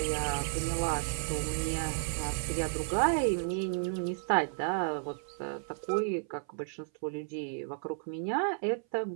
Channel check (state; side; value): silent; left; 56 dB below the other